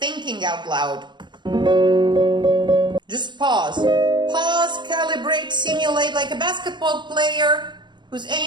out loud. Just pause. Pause, calibrate, simulate like a basketball player who's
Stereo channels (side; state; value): left; late; 0.22 ms